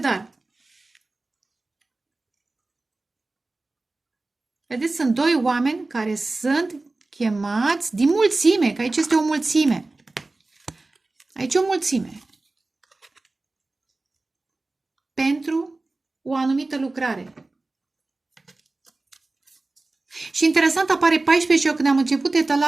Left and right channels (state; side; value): quieter; left; 3.2 dB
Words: vedeți, sunt doi oameni care sunt chemați din mulțime, că aici este o mulțime. Aici e o mulțime. Pentru o anumită lucrare. Și interesant, apare 14 și eu când am început